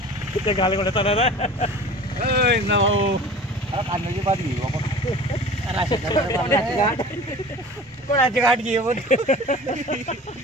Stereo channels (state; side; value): normal; both; correlation 0.41